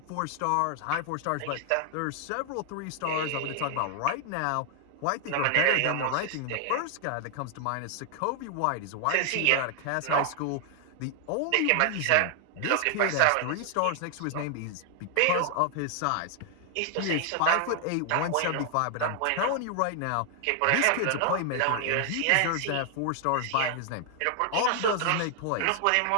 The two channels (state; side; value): different; both; correlation 0.00